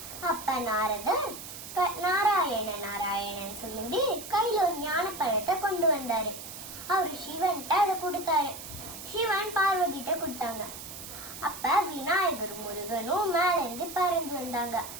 அப்ப நாரதர் நாராயணன் சொல்லி கையில ஒரு ஞான பழத்தை கொண்டு வந்தாரு. அவரு சிவன்கிட்ட அதை கொடுத்தாரு. சிவன் பார்வதிட்ட கொடுத்தாங்க. அப்ப விநாயகர் முருகனும் மேல இருந்து பறந்து வந்தாங்க.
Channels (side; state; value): right; noise; hiss, 11 dB below the sound